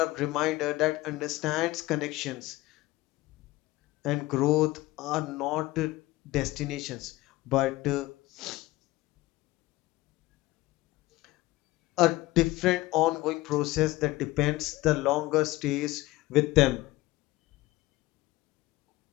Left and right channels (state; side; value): quieter; right; 18.9 dB